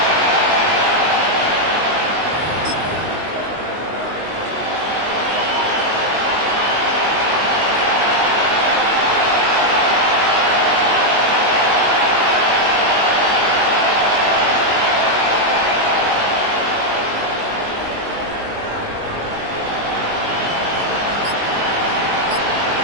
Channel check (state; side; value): late; left; 19 ms